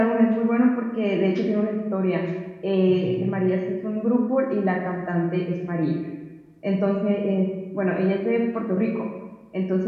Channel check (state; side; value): identical; both; correlation 1.00